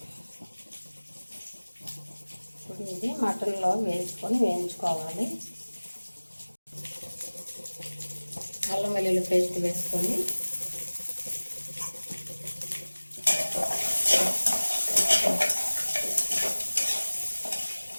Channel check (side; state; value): both; inverted; correlation -1.00